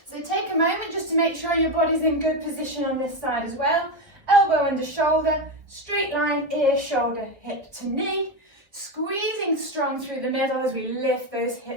So take a moment just to make sure your body's in good position on this side as well. Elbow under shoulder, straight line, ear, shoulder, hip to knee. Squeezing strong through the middle as we lift those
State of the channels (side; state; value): left; late; 1.4 ms